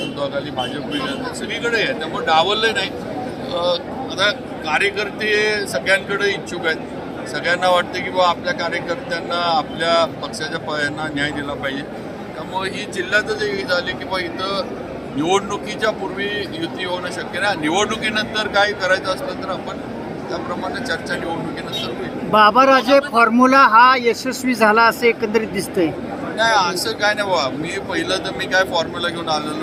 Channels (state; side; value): identical; both; correlation 1.00